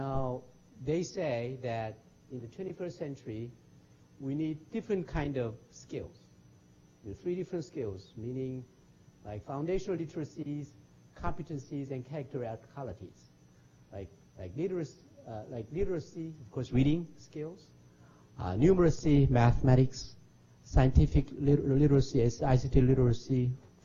they say that in the 21st century, we need different kind of skills. Three different skills, meaning like foundational literacies, competencies, and character qualities. Like literacy, of course, reading skills, numeracy, mathematics, scientific literacy, ICT literacy,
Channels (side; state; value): both; identical; correlation 1.00